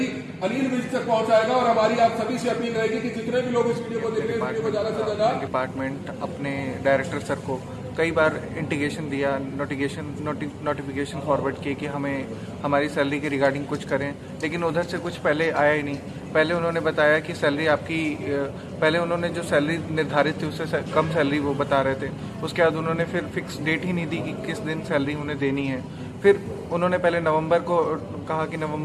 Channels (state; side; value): identical; both; correlation 1.00